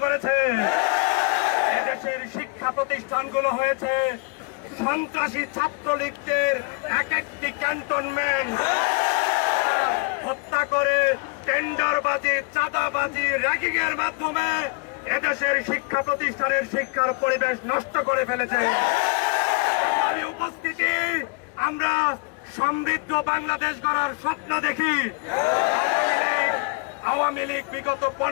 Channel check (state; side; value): quieter; right; 31.6 dB